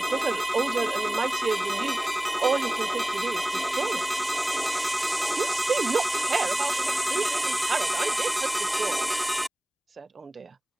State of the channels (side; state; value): both; normal; correlation 0.97